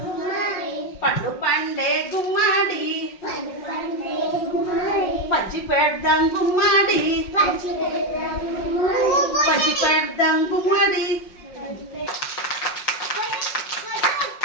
పండు పండే గుమ్మాడి పంచి పెడదాం గుమ్మాడి పంచి పెడదాం గుమ్మాడి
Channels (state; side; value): late; right; 5.5 ms